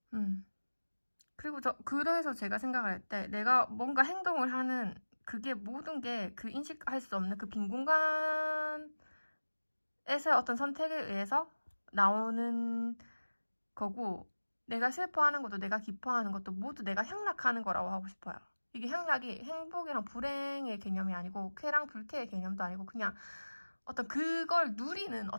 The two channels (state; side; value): inverted; both; correlation -1.00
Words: 그리고 그래서 제가 생각을 할 때 내가 뭔가 행동을 하는 그게 모든 게 그 인식할 수 없는 그 빈 공간에서 어떤 선택에 의해서 나오는 거고 내가 슬퍼하는 것도 내가 기뻐하는 것도 모두 내가 향락하는 거라고 하고 싶어요. 이게 향락이 행복이랑 불행의 개념이 아니고 쾌랑 불쾌의 개념도 아니고 그냥 어떤 그걸 누리는